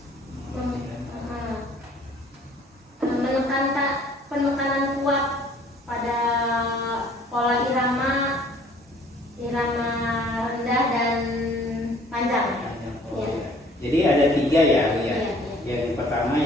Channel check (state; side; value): normal; both; correlation 0.55